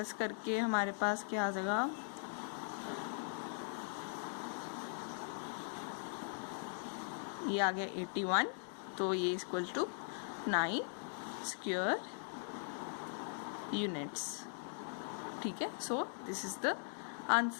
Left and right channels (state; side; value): silent; right; digital silence